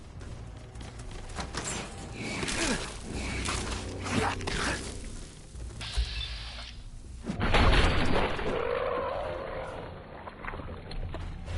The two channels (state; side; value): identical; both; correlation 1.00